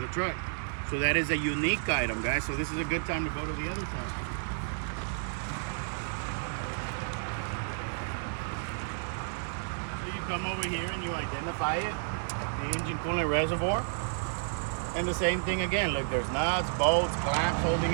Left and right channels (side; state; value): left; silent; digital silence